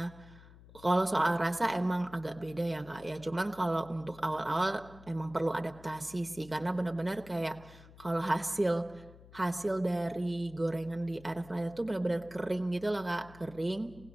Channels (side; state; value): left; noise; hum, 20 dB below the sound